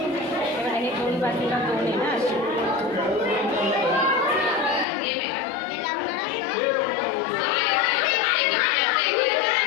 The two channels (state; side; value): drops out; right; at 4.9 s